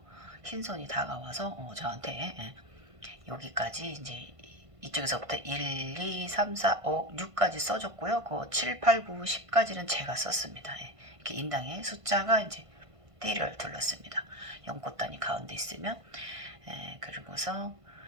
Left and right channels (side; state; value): left; late; 1.5 ms